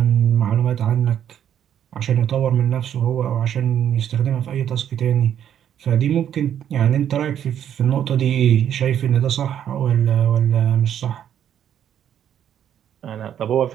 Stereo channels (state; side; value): quieter; left; 9.8 dB